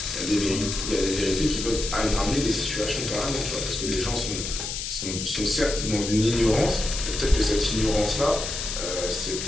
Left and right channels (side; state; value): left; noise; hiss, 5 dB below the sound